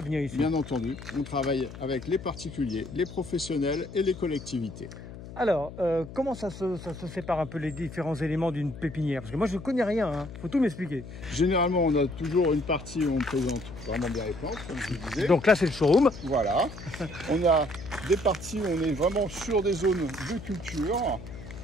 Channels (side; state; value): left; noise; hum, 13 dB below the sound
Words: ici. Bien entendu, on travaille avec les particuliers, les professionnels et les collectivités. Alors, comment ça se sépare un peu les différents éléments d'une pépinière? Parce que moi, je ne connais rien, hein. Faut tout m'expliquer. Généralement, on a toujours une partie où on présente vraiment bien les plantes, comme je vous disais. Donc là, c'est le showroom. Voilà. On a des parties où on est vraiment sur des zones de culture,